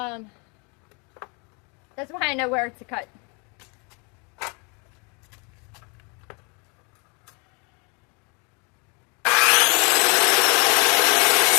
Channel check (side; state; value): right; quieter; 32.3 dB